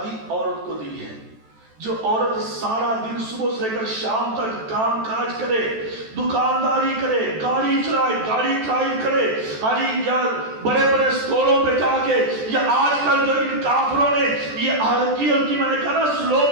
عورت کو دی ہے. جو عورت سارا دن صبح سے لے کر شام تک کام کاج کرے، دکانداری کرے، گاڑی چلائے، گاڑی ڈرائیو کرے، یا بڑے بڑے سٹوروں پہ جا کے، یا آج کل جو ان کافروں نے یہ ہلکی میں نے کہا نا سلو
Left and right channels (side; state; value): left; late; 14 ms